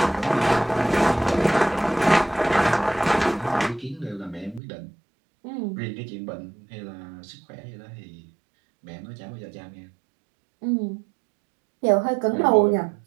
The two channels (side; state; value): left; drops out; at 4.6 s